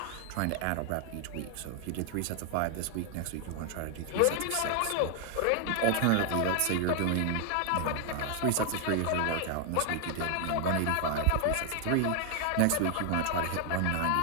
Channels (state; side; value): different; both; correlation 0.00